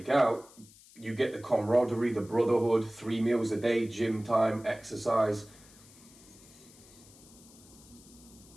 out. You get the camaraderie, the brotherhood, 3 meals a day, gym time, exercise.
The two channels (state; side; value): noise; left; hiss, 23 dB below the sound